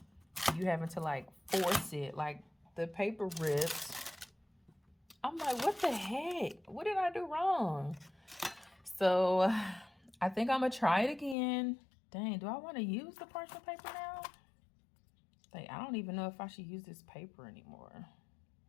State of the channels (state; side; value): drops out; right; at 11.4 s